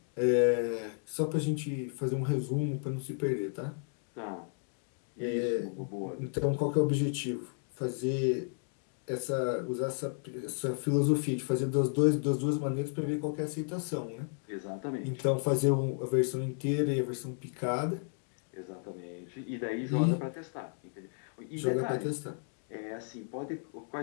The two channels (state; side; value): silent; right; 56 dB below the other